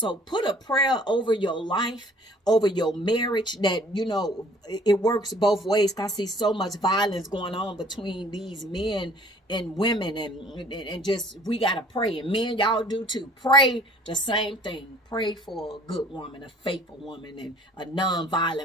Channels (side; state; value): both; normal; correlation 0.54